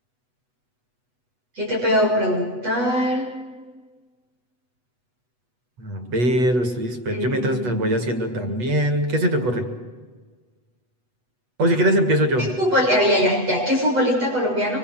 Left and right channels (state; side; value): late; left; 8.1 ms